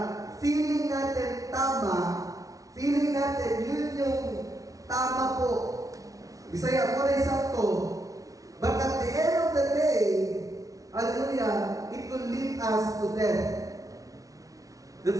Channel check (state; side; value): late; left; 0.17 ms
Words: feeling natin tama, feeling natin yun yung tama po. Bisaya mo na isakto. But at the end of the day, hallelujah, it will lead us to death.